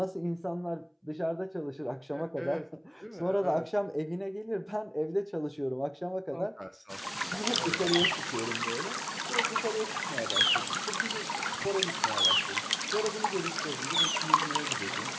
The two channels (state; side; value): identical; both; correlation 1.00